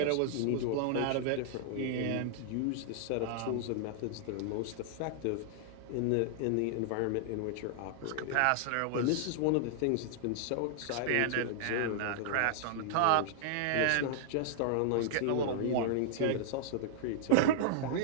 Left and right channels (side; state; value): both; different; correlation -0.01